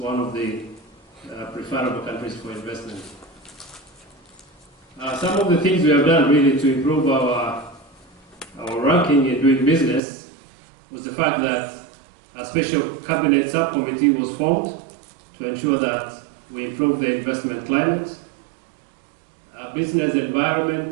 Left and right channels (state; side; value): drops out; left; at 10.0 s